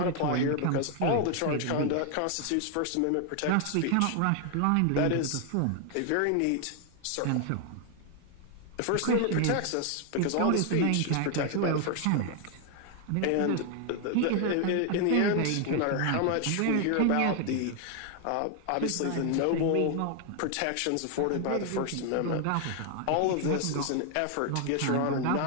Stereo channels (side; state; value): both; different; correlation 0.00